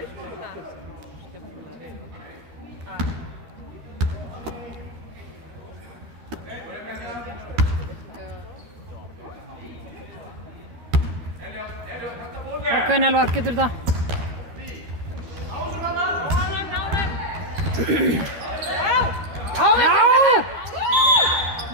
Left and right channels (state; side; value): late; left; 13 ms